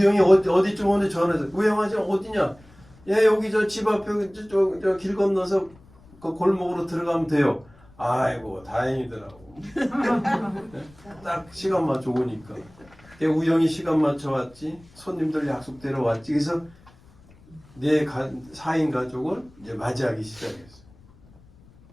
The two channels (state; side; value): noise; left; rumble, 26 dB below the sound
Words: 어디쯤 오는데 전화해서 우영아 지금 어디냐? 여기 저 집 앞에 저 길 건너서 그 골목으로 들어가면 돼요. 아이고 다행이더라고. 딱 시간 맞춰 오니까. 우영이 시간 맞춰 왔지. 손님들 약속대로 왔지. 그래서 4인 가족을 이제 맞이하기 시작했어.